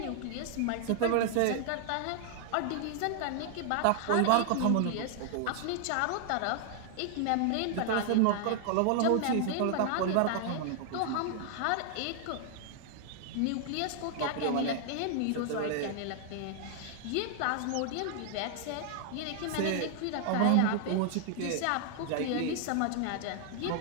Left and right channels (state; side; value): different; both; correlation 0.00